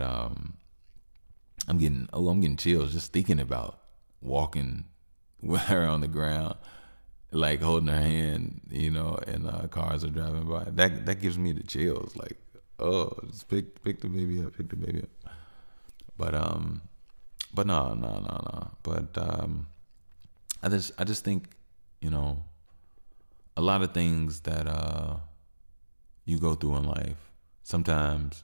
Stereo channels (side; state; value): both; inverted; correlation -1.00